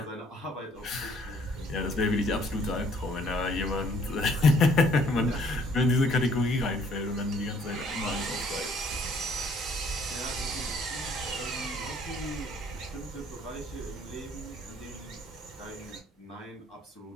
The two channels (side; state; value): both; normal; correlation 0.61